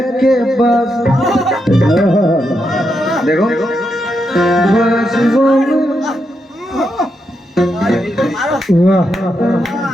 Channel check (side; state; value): both; normal; correlation 0.83